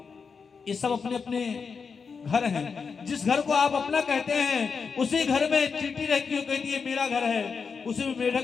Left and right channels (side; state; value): right; quieter; 5.5 dB